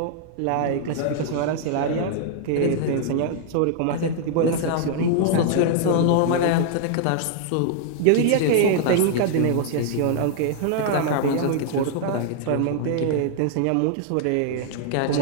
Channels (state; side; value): different; both; correlation 0.00